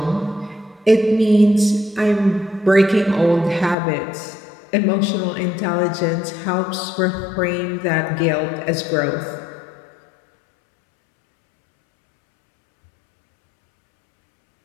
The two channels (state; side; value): drops out; right; at 3.8 s